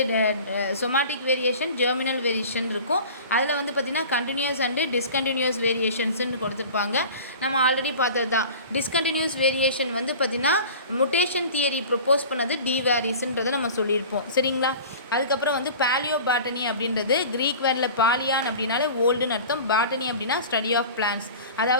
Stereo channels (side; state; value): both; inverted; correlation -0.39